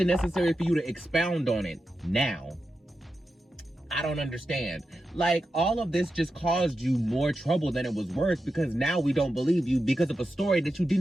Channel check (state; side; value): normal; both; correlation 0.90